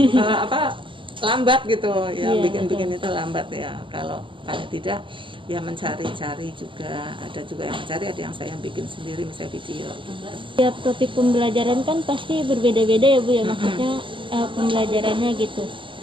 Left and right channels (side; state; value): left; late; 0.25 ms